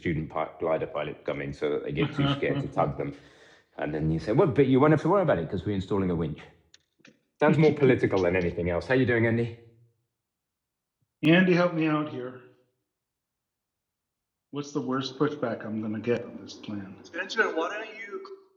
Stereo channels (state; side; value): identical; both; correlation 1.00